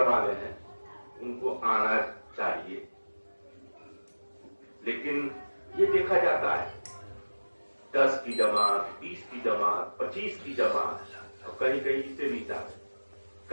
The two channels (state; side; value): inverted; both; correlation -1.00